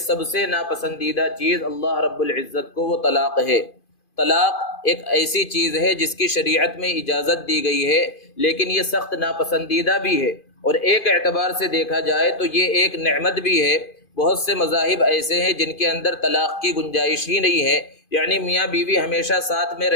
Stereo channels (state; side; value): late; right; 2.5 ms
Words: سب سے ناپسندیدہ چیز اللہ رب العزت کو وہ طلاق ہے۔ طلاق ایک ایسی چیز ہے جس کی شریعت میں اجازت دی گئی ہے لیکن یہ سخت ناپسندیدہ بھی ہے، اور ایک اعتبار سے دیکھا جائے تو یہ ایک نعمت بھی ہے۔ بہت سے مذاہب ایسے ہیں جن کے اندر طلاق کی گنجائش ہی نہیں ہے، یعنی میاں بیوی ہمیشہ ساتھ میں